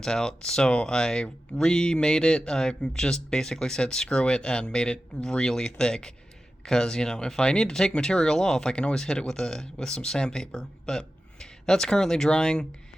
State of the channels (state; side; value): normal; both; correlation 0.93